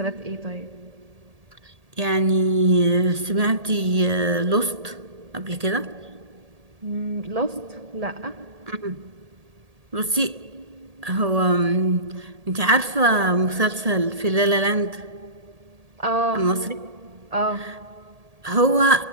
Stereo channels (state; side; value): late; left; 1.8 ms